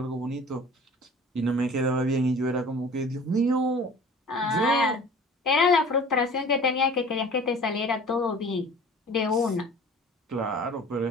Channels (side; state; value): both; normal; correlation 0.45